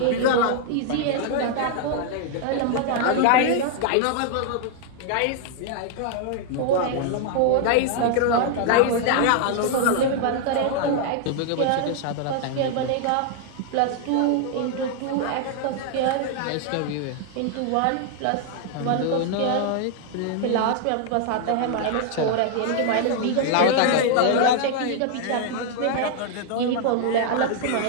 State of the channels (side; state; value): both; different; correlation 0.00